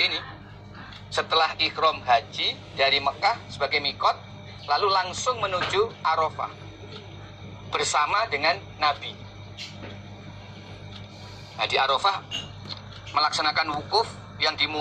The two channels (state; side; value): identical; both; correlation 1.00